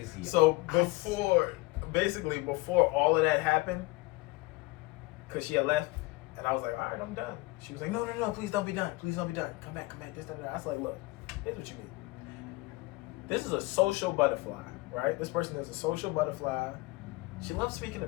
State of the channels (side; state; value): right; quieter; 22.0 dB